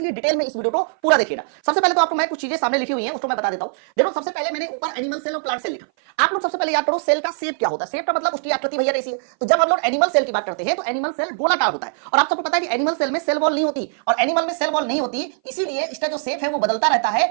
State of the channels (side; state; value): left; silent; 58 dB below the other